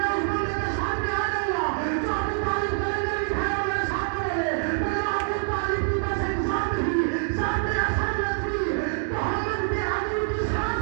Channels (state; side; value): silent; left; digital silence